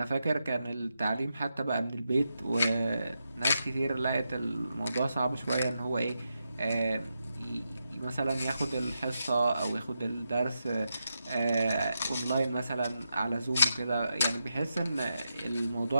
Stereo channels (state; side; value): inverted; both; correlation -0.86